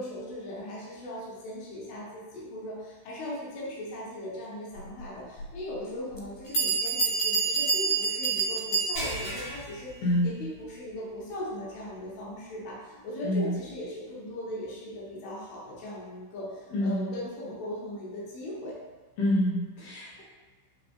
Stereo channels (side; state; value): right; late; 16 ms